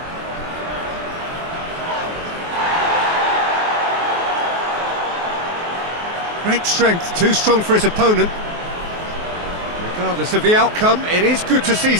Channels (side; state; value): left; late; 23 ms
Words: Great strength, too strong for his opponent. Regardless of the outcome, it is good to see